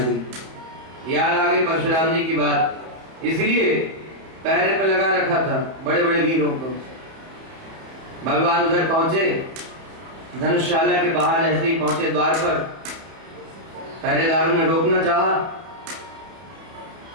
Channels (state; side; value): late; left; 31 ms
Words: याद आ गई परशुराम जी की बात। इसलिए पहरे पे लगा रखा था बड़े बड़े वीरों को। भगवान उधर पहुंचे, धनुषशाला के बाहर जैसे ही पहुंचे द्वार पर, पहरेदारों ने रोकना चाहा,